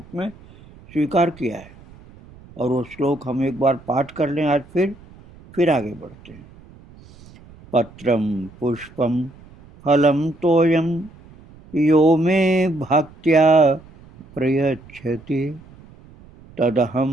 में स्वीकार किया है। और वो श्लोक हम एक बार पाठ कर लें आज, फिर आगे बढ़ते हैं। पत्रम पुष्पम फलम तोयम यो मे भक्त्या प्रयच्छति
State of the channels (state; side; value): noise; right; rumble, 23 dB below the sound